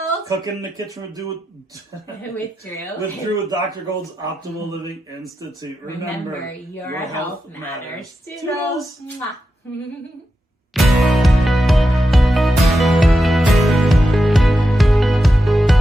Cooking in the kitchen with Drew. With Drew. With Drew with Dr. Gold's Optimal Living Institute. Remember, your health matters. Toodles. Toodles.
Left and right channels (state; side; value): normal; both; correlation 0.89